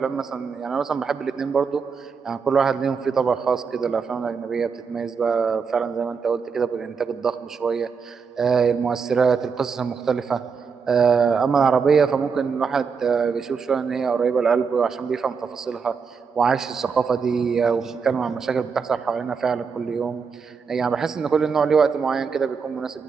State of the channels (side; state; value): left; quieter; 5.7 dB